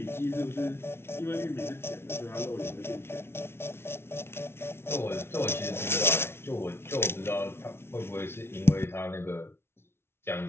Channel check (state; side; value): late; right; 0.12 ms